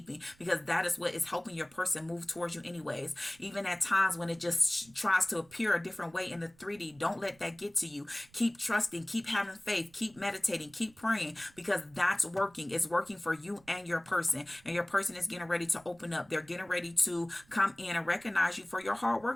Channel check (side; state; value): right; noise; rumble, 28 dB below the sound